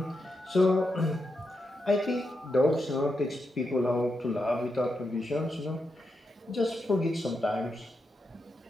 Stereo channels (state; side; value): normal; both; correlation 0.85